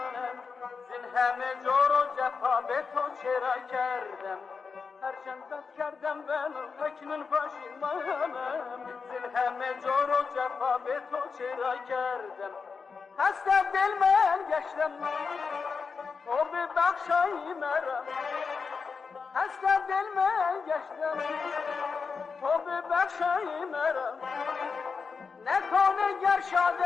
زین همه جور و جفا به تو چرا کردم. هرچند بد کردم ولی اکنون پشیمانم، زین همه جور و جفا به تو چرا کردم. خسته دل من گشتم تو ببخشای مرا، خسته دل من گشتم تو ببخشای مرا. نکنه گر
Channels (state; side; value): quieter; right; 5.2 dB